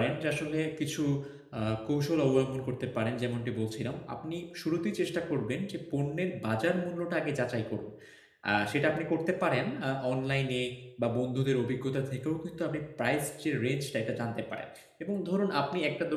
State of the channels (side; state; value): both; identical; correlation 1.00